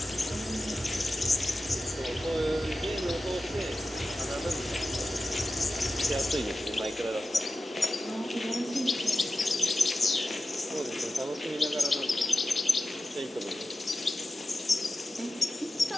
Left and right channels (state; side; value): normal; both; correlation 0.93